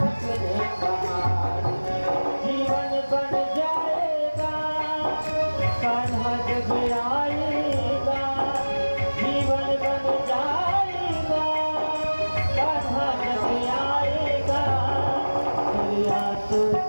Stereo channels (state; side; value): inverted; both; correlation -1.00